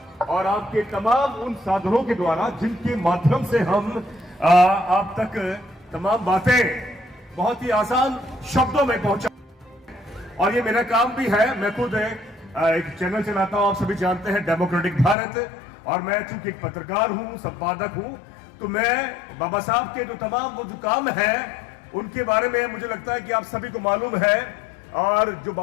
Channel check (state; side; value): drops out; right; at 15.2 s